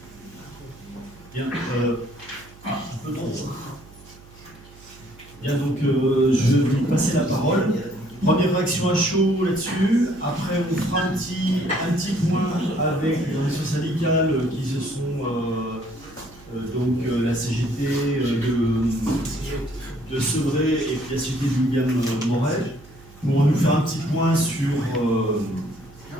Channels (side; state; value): right; noise; hum, 22 dB below the sound